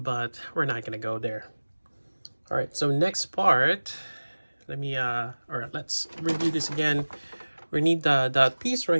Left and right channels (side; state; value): both; inverted; correlation -1.00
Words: we're not gonna go there. All right, so next part, let's review this again. We need that piece